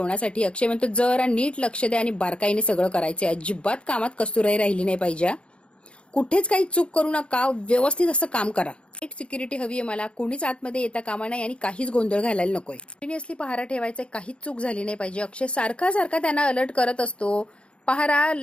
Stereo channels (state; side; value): late; right; 0.058 ms